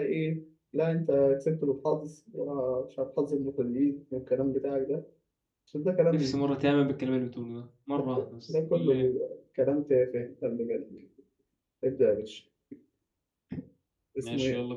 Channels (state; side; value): identical; both; correlation 1.00